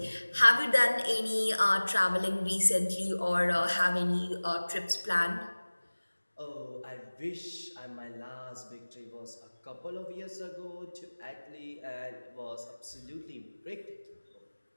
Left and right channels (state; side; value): inverted; both; correlation -1.00